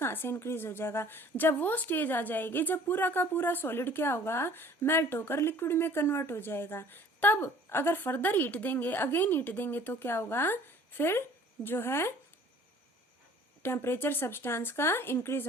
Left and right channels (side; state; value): both; normal; correlation 0.52